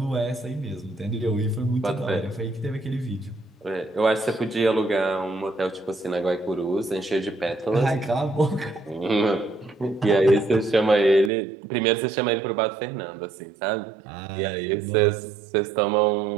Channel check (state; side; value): drops out; left; at 11.3 s